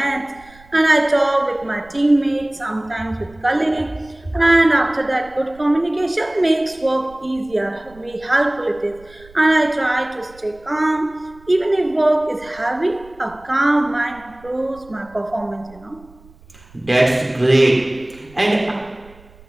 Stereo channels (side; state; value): right; noise; rumble, 25 dB below the sound